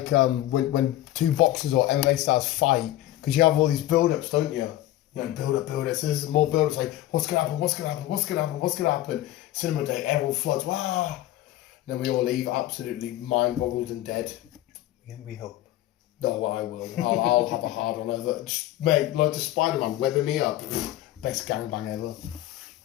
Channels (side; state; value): right; quieter; 14.6 dB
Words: when two boxers or MMA stars fight, because you have all these build-ups, don't you? You know, build up. So there's more build-ups, like, what's going to happen? Cinema day, everyone floods, wow! And then we all leave absolutely mind-boggled and dead. We hope. No, I will. I'll have a hard on over. Just, mate, like the Spider-Man webbing me up. Best gangbang ever.